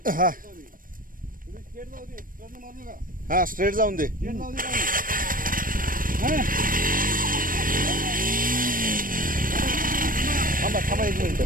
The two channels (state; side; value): late; left; 0.40 ms